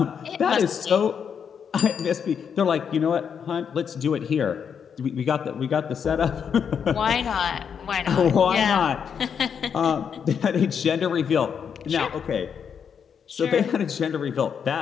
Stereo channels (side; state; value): right; quieter; 7.3 dB